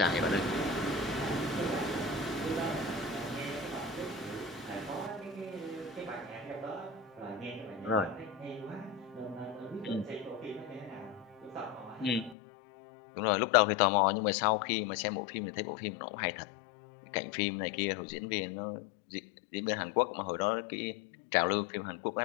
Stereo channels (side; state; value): right; drops out; at 12.4 s